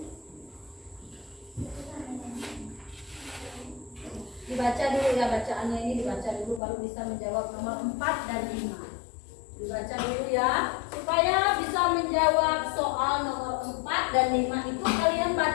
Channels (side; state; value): right; drops out; at 6.6 s